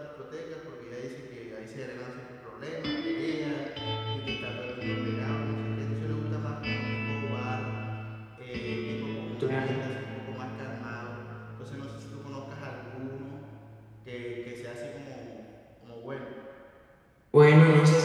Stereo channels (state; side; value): identical; both; correlation 1.00